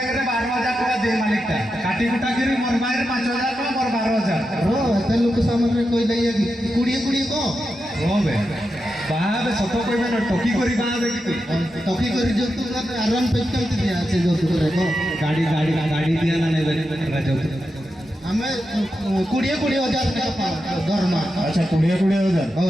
12,000 ଟଙ୍କା ଦେ ମାଲିକଟା କାଟି କୁଟା କରି ମୋର ବାଇରେ 5,000 ଟଙ୍କା ମୋର 12,000 ରୋ ଏତେ ଲୋକ ସାମନେ କହି ଦଇଆ କି କୁଡ଼ିଏ କୁଡ଼ିଏ କହ ରୋ ବେ ବାହାବେ ସତ କହିବେ ନା ଟକି କରି ବାହାବେ କି ତୁ ଟକି କରି ଯୌତୁକ ଆରାମ ପେ କେମିତି ଦିଆ ଅଛି ଯୌତୁକରେ କହ ଗାଡ଼ି ଦିଆ ନା ନେବେ ଯୌତୁକ ଆମେ 20,000 ଟଙ୍କା ଦରମା अच्छा 20,000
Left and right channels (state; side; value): normal; both; correlation 0.88